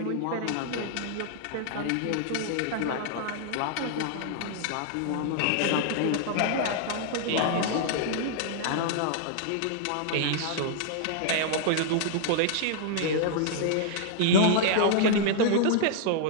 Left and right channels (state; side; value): different; both; correlation -0.01